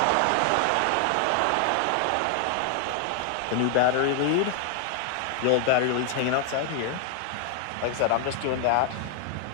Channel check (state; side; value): different; both; correlation 0.00